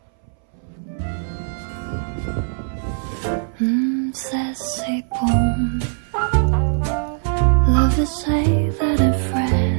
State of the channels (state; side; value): silent; left; 62 dB below the other